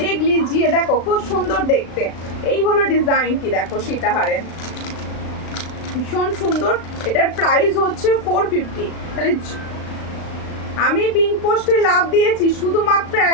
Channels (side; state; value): right; late; 36 ms